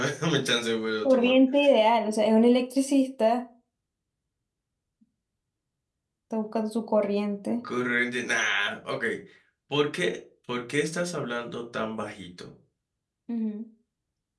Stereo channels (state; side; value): identical; both; correlation 1.00